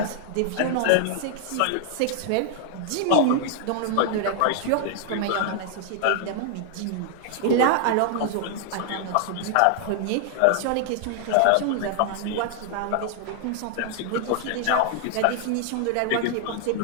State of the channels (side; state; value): both; different; correlation 0.00